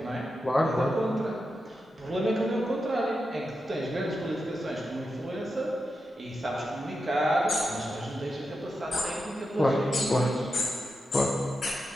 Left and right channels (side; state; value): both; normal; correlation 0.89